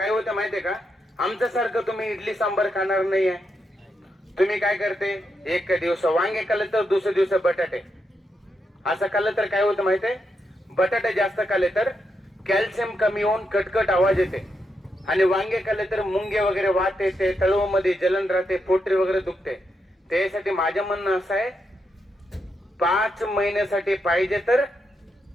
होतं माहितीये का, आमच्या सारखं तुम्ही इडली सांबार खाणार नाहीये. तुम्ही काय करते, एक दिवस वांगे खाल्ले तर दुसरे दिवस बटाटे. असं खाल्लं तर काय होतं माहितीये, बटाटे जास्त खाल्ले तर कॅल्शियम कमी होऊन कटकट आवाज येते. आणि वांगे खाल्ले तर मुंगे वगैरे वात येते, तळवमध्ये जलन राहते, पोटरी वगैरे दुखते. त्यासाठी माझं म्हणणं असं आहे, 5 महिन्यासाठी पाहिजे तर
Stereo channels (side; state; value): both; normal; correlation 0.83